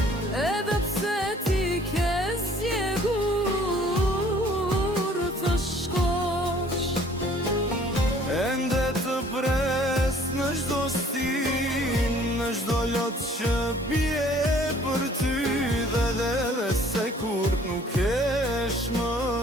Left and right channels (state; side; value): normal; both; correlation 0.56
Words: Në çdo lot që bie për ty dhe se kur nuk kesh më,